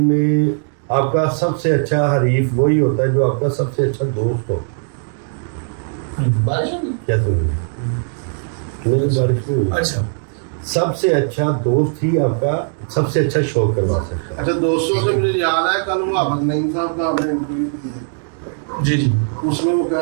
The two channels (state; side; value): silent; left; digital silence